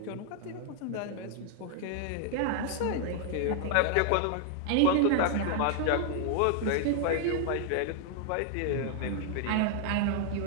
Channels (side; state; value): both; different; correlation 0.00